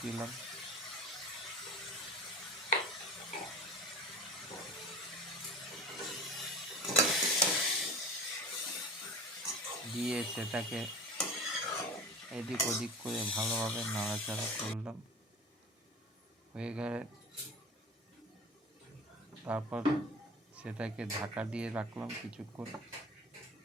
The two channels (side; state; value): both; normal; correlation 0.36